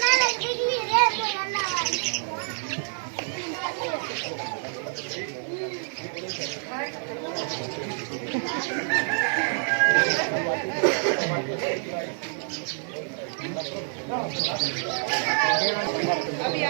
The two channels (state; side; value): silent; left; 60 dB below the other